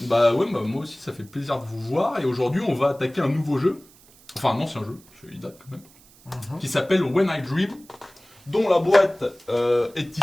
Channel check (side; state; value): right; noise; hiss, 26 dB below the sound